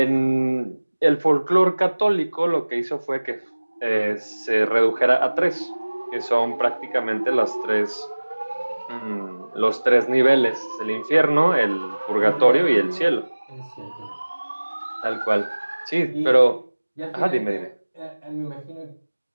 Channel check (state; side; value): inverted; both; correlation -1.00